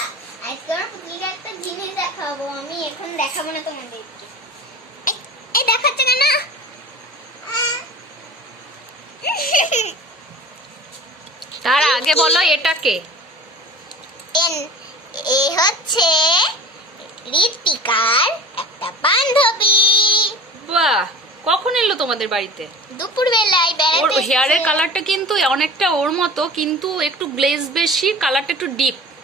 আজকে আমার পুতুলিকে একটা জিনিস দেখাবো। আমি এখন দেখাবো না তোমাদেরকে। এই দেখাচ্ছে কেন? তার আগে বলো এটা কে? এ হচ্ছে ঋতিকার একটা বান্ধবী। বাহ, কখন এলো তোমাদের বাড়িতে? দুপুর বেলায় ওর বেড়াতে হেয়ারের এসেছে। কালারটা কিন্তু অনেকটা ওর মতো, কিন্তু একটু গ্লেজ বেশি, কালারটা একটু ডিপ।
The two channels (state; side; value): normal; both; correlation 0.38